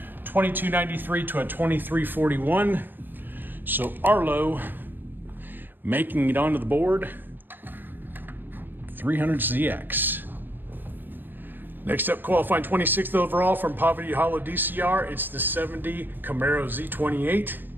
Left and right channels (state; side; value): late; left; 0.093 ms